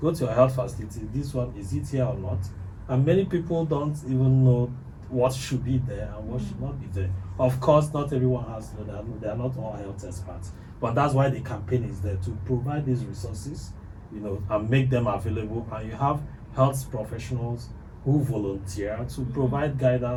go to your health facility, this one, is it here or not? And many people don't even know what should be there and what should not be there. Of course, not everyone has, they are not all health experts, but that's why the campaign is there, to provide these resources, you know, and make them available. And you have health professionals who volunteer to provide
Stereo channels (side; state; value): both; identical; correlation 1.00